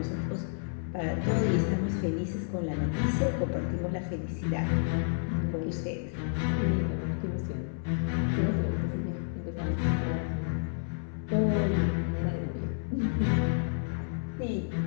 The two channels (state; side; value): silent; right; 58 dB below the other